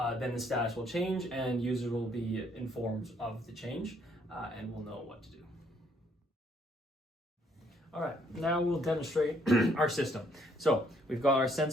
the status will change and users will be informed of the change and will know what to do. All right, now we'll demonstrate our system. So we've got our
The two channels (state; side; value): normal; both; correlation 0.67